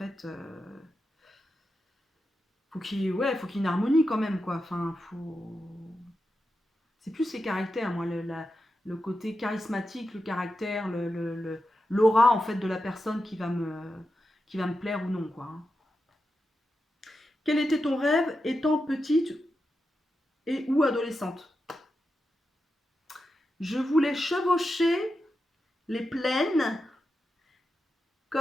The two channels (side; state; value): both; normal; correlation 0.89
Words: Faut qu'il y ait une harmonie quand même, quoi. Enfin, c'est plus les caractères, moi, le côté charismatique, le caractère, l'aura en fait de la personne qui va me plaire ou non, quoi. Quel était ton rêve étant petite et ou adolescente? Je voulais chevaucher les plaines